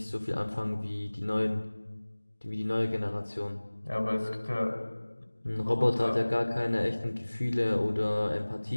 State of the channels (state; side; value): inverted; both; correlation -1.00